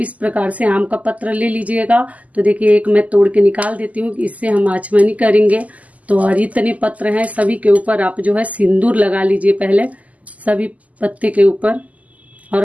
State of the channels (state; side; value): late; left; 0.074 ms